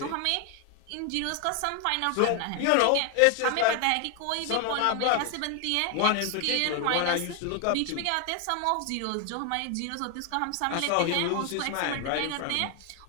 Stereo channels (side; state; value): both; different; correlation 0.00